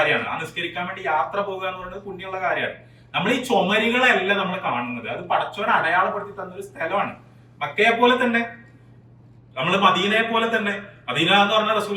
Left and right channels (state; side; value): identical; both; correlation 1.00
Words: ആ നിസ്കരിക്കാൻ വേണ്ടി യാത്ര പോകുക എന്ന് പറയുന്നത് പുണ്യമുള്ള കാര്യമാണ്. നമ്മൾ ഈ ചുമരുകളല്ല നമ്മൾ കാണുന്നത്, അത് പടച്ചവൻ അടയാളപ്പെടുത്തി തന്നൊരു സ്ഥലമാണ്. മക്കയെ പോലെ തന്നെ, നമ്മൾ മദീനയെ പോലെ തന്നെ. മദീന എന്ന് പറഞ്ഞാൽ